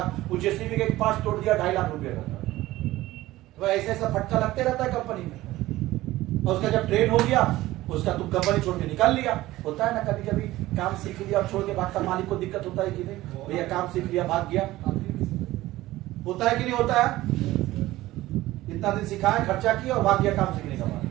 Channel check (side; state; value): left; quieter; 16.9 dB